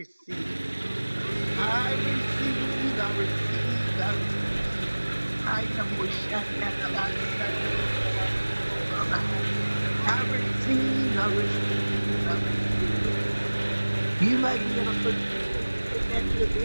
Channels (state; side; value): inverted; both; correlation -1.00